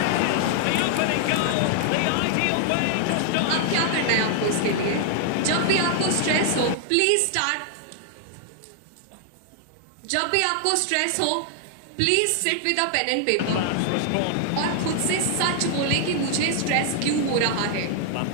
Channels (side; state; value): both; different; correlation 0.00